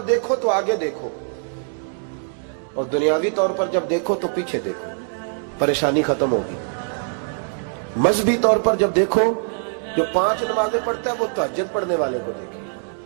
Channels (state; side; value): silent; left; 64 dB below the other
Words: دیکھو تو آگے دیکھو، اور دنیاوی طور پر جب دیکھو تو پیچھے دیکھو، پریشانی ختم ہوگی۔ مذہبی طور پر جب دیکھو، جو 5 نمازیں پڑھتا ہے وہ تہجد پڑھنے والے کو دیکھے،